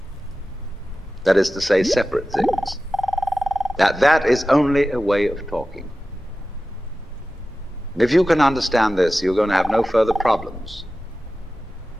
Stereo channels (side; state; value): both; normal; correlation 0.95